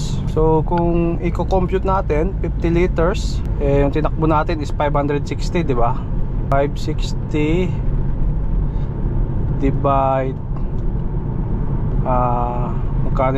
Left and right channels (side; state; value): both; identical; correlation 1.00